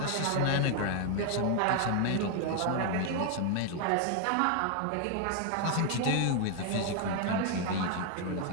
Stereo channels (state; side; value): different; both; correlation 0.00